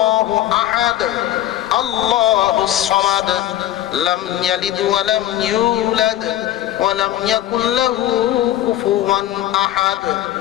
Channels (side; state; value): right; quieter; 13.1 dB